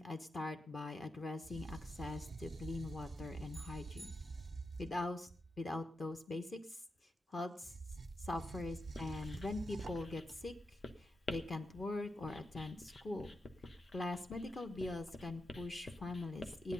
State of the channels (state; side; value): normal; both; correlation 0.87